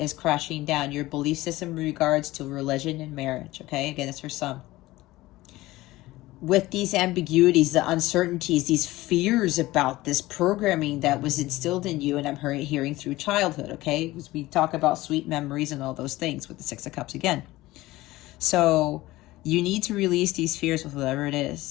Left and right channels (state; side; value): quieter; right; 18.1 dB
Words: crashing down. Your belief system in regards to religion and marriage, okay? Again, it's for some. With these ambiguities, the uncertainties, these fears about this programming that was instilled in you, and I'm hearing through childhood, okay? Because we talk about sweet memories and all those things with the Six of Cups again. So you need to release these fears with whatever it